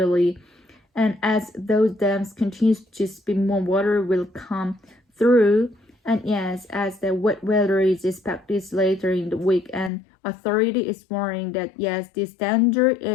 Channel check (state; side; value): drops out; right; at 9.9 s